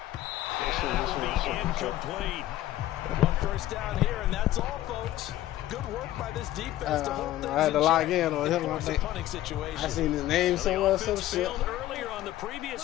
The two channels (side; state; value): right; quieter; 14.3 dB